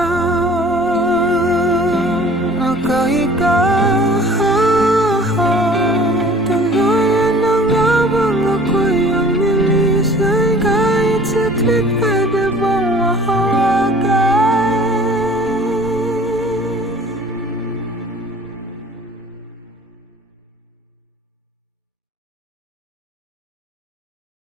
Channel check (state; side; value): normal; both; correlation 0.49